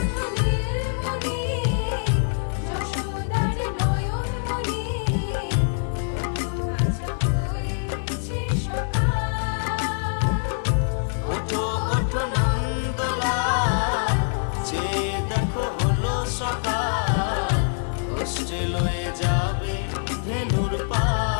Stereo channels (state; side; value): silent; right; digital silence